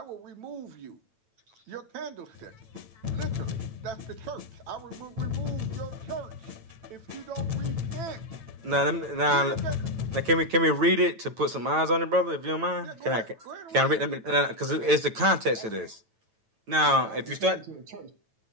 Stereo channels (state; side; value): late; left; 9.1 ms